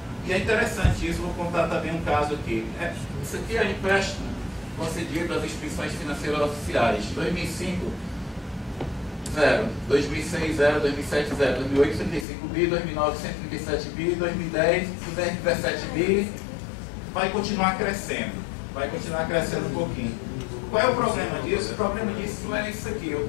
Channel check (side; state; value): right; drops out; at 12.2 s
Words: E é interessante isso, vou contar também um caso aqui. Isso aqui é empréstimo concedido às instituições financeiras oficiais. 2005, 0. 2006, 0. 2007, 0. 2008, 35 bi. 2009, 137 bi. 2010, 217 bi. Vai continuar crescendo. Vai continuar crescendo um pouquinho. Qual é o problema disso? O problema disso não é isso aqui. Eu